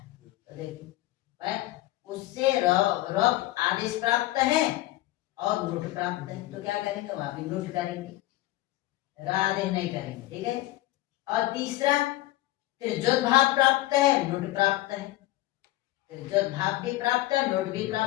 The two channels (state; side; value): quieter; right; 17.2 dB